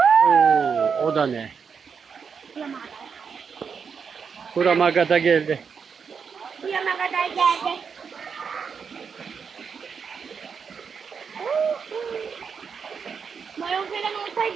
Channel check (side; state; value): left; quieter; 6.2 dB